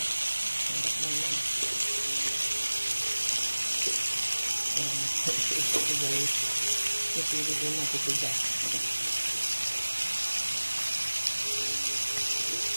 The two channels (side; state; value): both; inverted; correlation -1.00